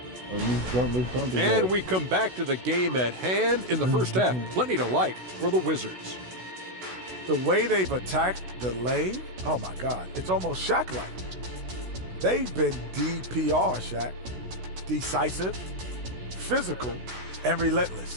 And we come back to the game at hand in the first half. Plenty to like for the Wizards. The way they've attacked the lane, oh my God, it's almost Shaq-like. They've been DPR, Shaq. Decisive, physical, and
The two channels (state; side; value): late; left; 16 ms